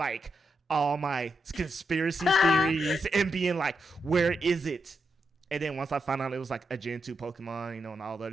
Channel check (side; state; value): both; normal; correlation 0.84